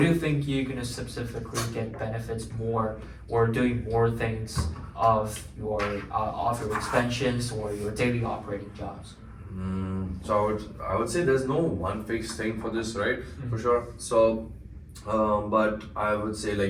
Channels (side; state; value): both; identical; correlation 1.00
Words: you think you're gonna specifically get benefits more, or doing more things of your expansions or your daily operating jobs? So I would say there's no one fixed thing for this, right? For sure. So, but I would say